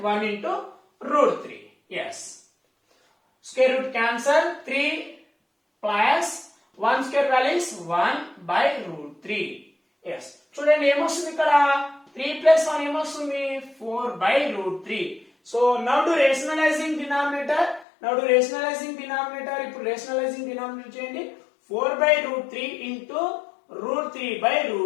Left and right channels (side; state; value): right; drops out; at 17.9 s